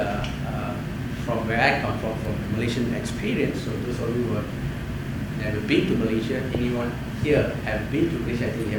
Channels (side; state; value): both; identical; correlation 1.00